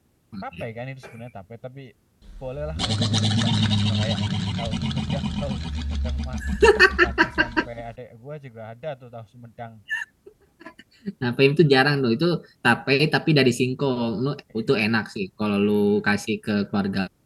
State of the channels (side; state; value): both; identical; correlation 1.00